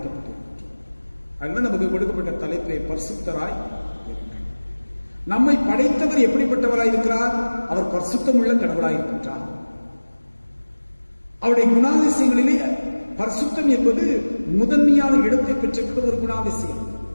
அதனால நமக்கு கொடுக்கப்பட்ட தலைப்பை பரிசுத்தராய் இருங்கள். நம்மை படைத்தவர் எப்படிப்பட்டவராய் இருக்கிறார்? அவர் பரிசுத்தம் உள்ள கடவுளாய் இருக்கின்றார். அவருடைய குணாதிசயங்களிலே பரிசுத்தம் என்பது முதன்மையான இடத்தை பெற்றிருக்கிற ஒரு குணாதிசயம்.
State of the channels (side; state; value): both; inverted; correlation -1.00